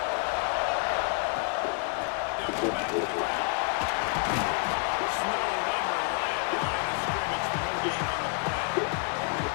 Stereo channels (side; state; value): right; quieter; 36.5 dB